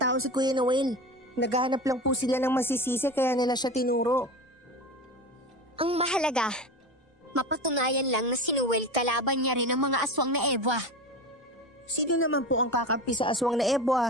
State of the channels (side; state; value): both; normal; correlation 0.27